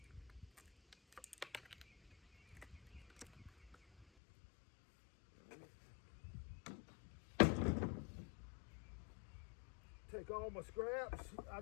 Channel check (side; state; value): right; drops out; at 4.0 s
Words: Take all my scraps. I